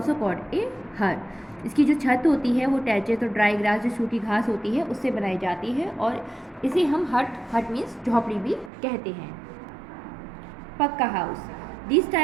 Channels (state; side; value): drops out; left; at 8.7 s